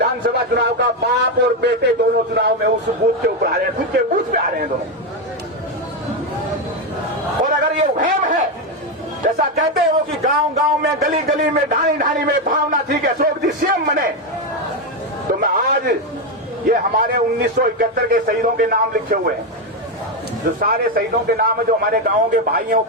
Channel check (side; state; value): both; normal; correlation 0.08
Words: चुनाव का बाप और बेटे दोनों चुनाव में उस बूथ के ऊपर आ रहे हैं, खुद के बूथ पे आ रहे हैं दोनों। और अगर ये वहम है, जैसा कहते हैं वो कि गांव गांव में, गली गली में, ढाणी ढाणी में भावना थी कि अशोक जी सीएम बने, तो मैं आज ये हमारे 1971 के शहीदों के नाम लिखे हुए हैं, जो सारे शहीदों के नाम है, जो हमारे गांवों के भाई हैं, वो